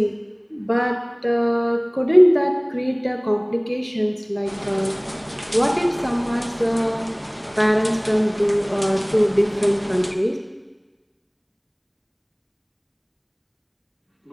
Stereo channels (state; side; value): identical; both; correlation 1.00